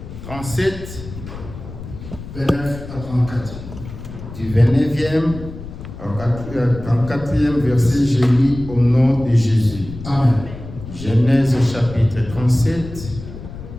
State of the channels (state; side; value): noise; left; rumble, 12 dB below the sound